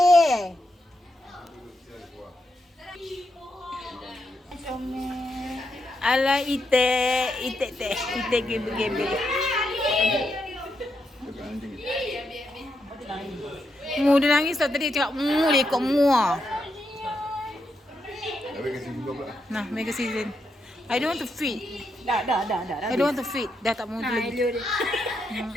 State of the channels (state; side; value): normal; both; correlation 0.82